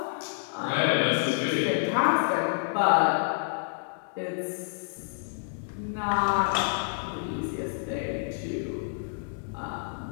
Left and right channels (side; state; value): right; silent; digital silence